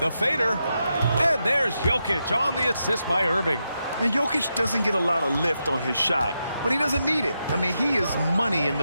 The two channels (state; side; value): inverted; both; correlation -0.86